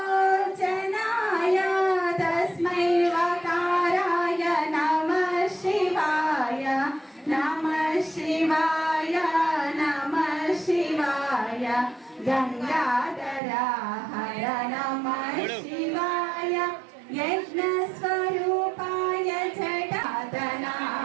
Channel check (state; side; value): drops out; left; at 13.4 s